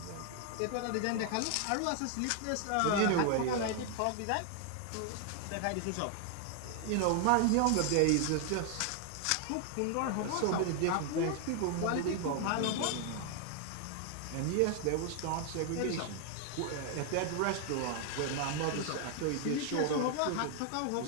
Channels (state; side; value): different; both; correlation 0.00